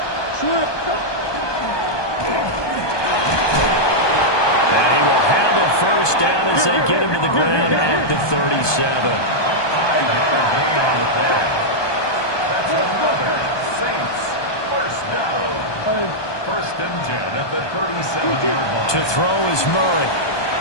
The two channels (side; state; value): right; late; 1.2 ms